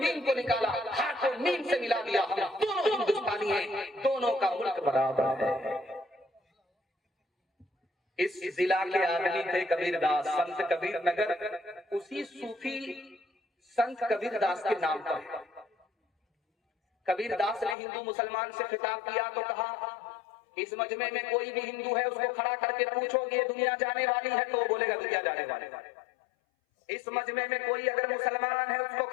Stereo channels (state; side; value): drops out; right; at 17.8 s